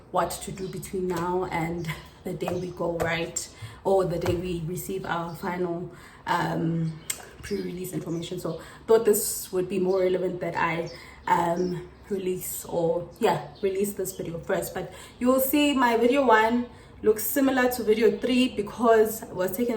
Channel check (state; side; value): identical; both; correlation 1.00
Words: what to do between now and the day we go right, or the day we receive our final pre-release information. So thought this would be more relevant that I release this video first. But you will see my video 1 looks similar to video 3 because it was